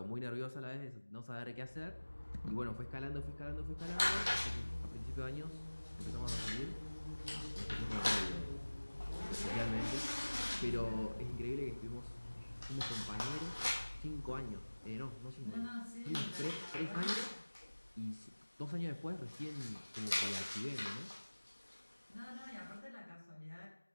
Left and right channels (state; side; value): inverted; both; correlation -1.00